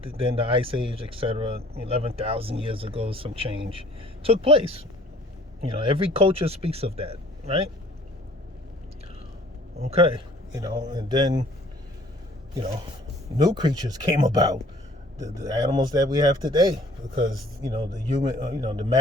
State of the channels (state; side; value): normal; both; correlation 0.54